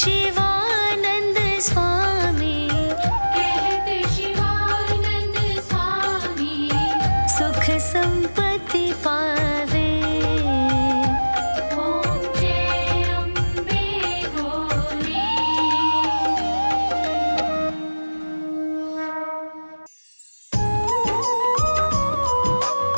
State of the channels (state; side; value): inverted; both; correlation -1.00